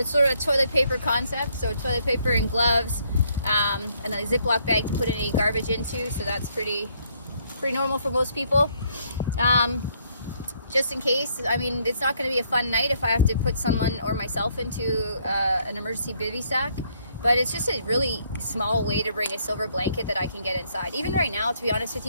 sort of a toilet paper concept. So toilet paper and gloves, and a Ziploc bag to put any garbage into. So that's pretty normal for most people. Just in case, I mean, it's not going to be a fun night if I have to put someone or myself into an emergency bivy sack. But it's just a really small way to bring a silver blanket that I can get inside. Even right now, to be honest with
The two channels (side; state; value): both; inverted; correlation -0.69